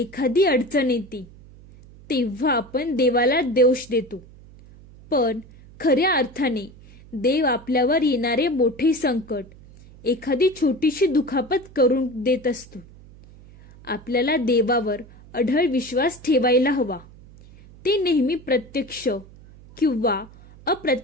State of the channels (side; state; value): right; noise; hum, 22 dB below the sound